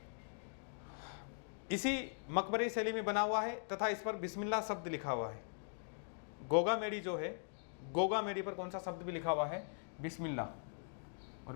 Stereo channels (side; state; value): right; silent; digital silence